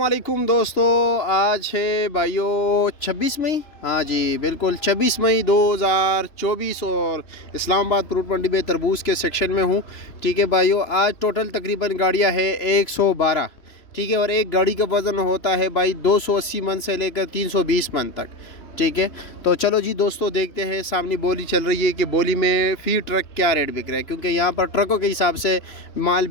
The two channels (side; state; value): right; late; 3.0 ms